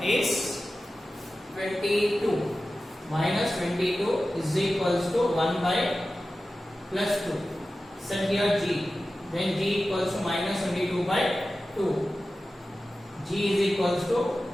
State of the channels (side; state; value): both; normal; correlation 0.94